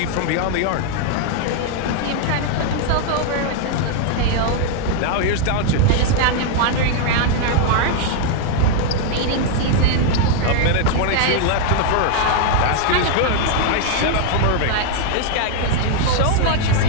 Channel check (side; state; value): both; different; correlation 0.00